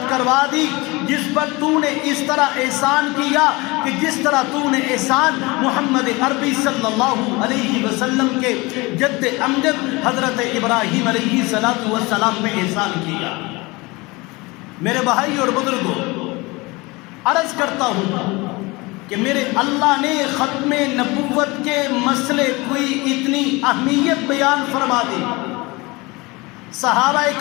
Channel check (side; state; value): right; quieter; 24.1 dB